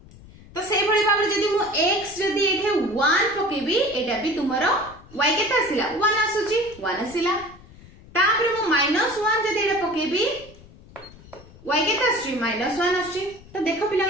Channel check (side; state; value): left; noise; rumble, 21 dB below the sound